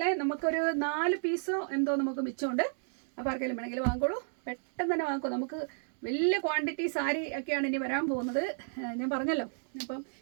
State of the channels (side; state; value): left; silent; digital silence